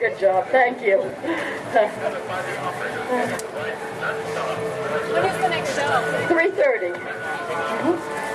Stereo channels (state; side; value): identical; both; correlation 1.00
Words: job. Thank you. When is the next show? 3:30.